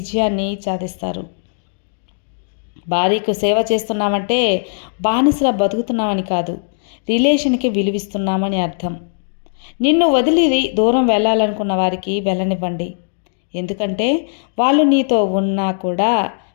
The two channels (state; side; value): silent; right; digital silence